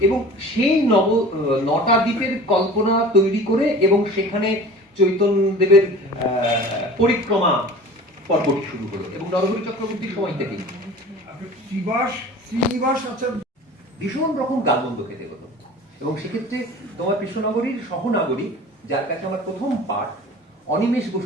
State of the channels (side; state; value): both; normal; correlation 0.40